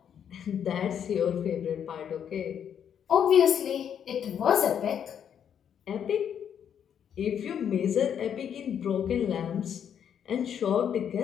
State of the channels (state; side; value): quieter; right; 8.6 dB